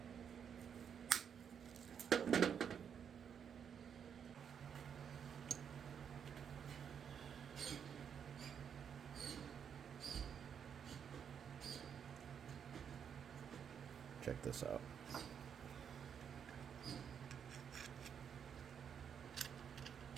Check this out.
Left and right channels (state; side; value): quieter; left; 7.7 dB